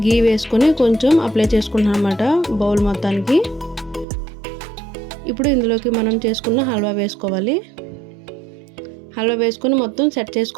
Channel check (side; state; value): left; drops out; at 4.0 s